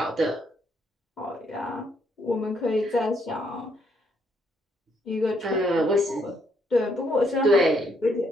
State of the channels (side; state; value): both; normal; correlation 0.72